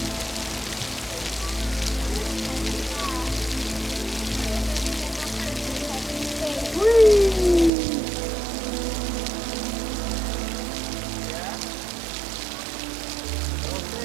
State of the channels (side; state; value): left; drops out; at 7.7 s